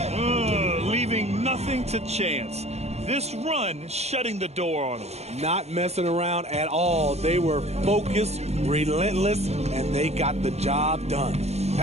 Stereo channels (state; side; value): late; left; 0.31 ms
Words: Leaving nothing to chance. This run shutting the door on him. Not messing around at all. They were focused, relentless, and they got the job done.